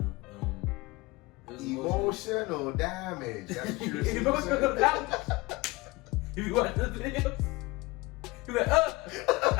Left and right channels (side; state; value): right; quieter; 22.0 dB